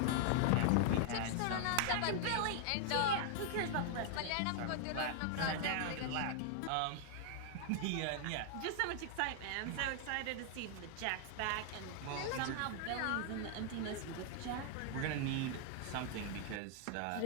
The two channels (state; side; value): different; both; correlation 0.00